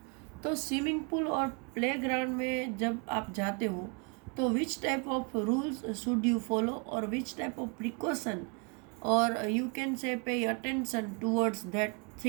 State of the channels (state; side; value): quieter; left; 34.0 dB